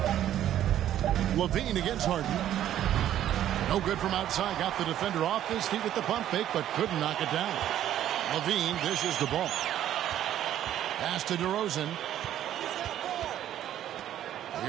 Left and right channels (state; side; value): quieter; left; 11.6 dB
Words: Levine against Harden. No good from outside. Got the defender off his feet with the pump fake, but couldn't knock it down. Levine dishes the ball. Pass to DeRozan.